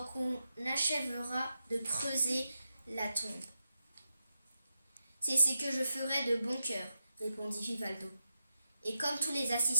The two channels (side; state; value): both; inverted; correlation -0.87